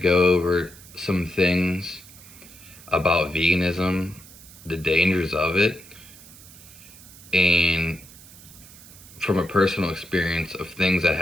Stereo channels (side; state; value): right; noise; hiss, 20 dB below the sound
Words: over some things about veganism, the dangers of it, and from a personal experience of things that